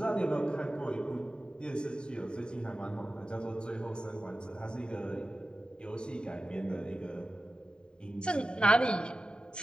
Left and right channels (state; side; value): late; right; 0.049 ms